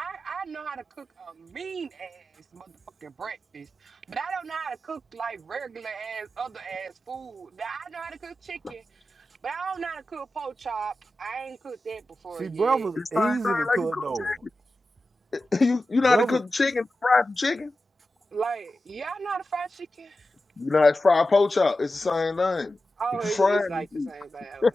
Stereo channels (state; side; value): normal; both; correlation 0.93